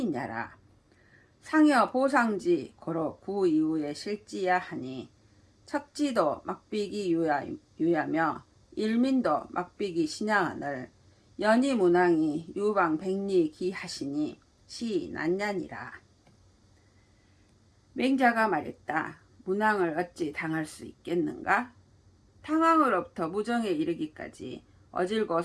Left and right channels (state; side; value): identical; both; correlation 1.00